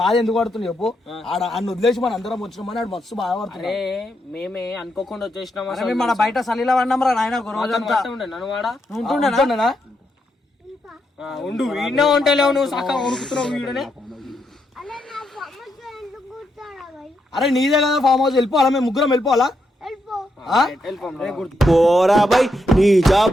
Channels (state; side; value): normal; both; correlation 0.81